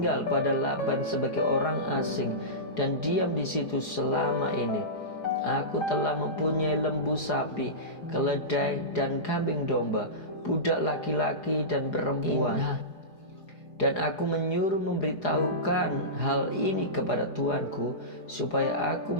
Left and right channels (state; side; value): late; right; 4.8 ms